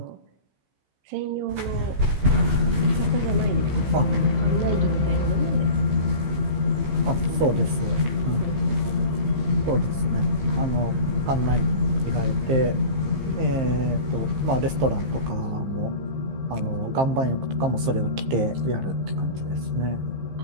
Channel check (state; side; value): late; left; 15 ms